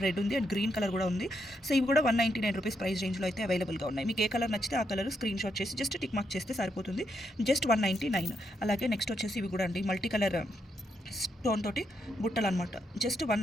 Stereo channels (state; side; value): normal; both; correlation 0.79